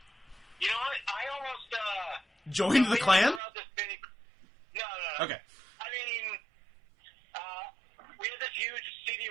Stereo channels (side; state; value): left; drops out; at 3.4 s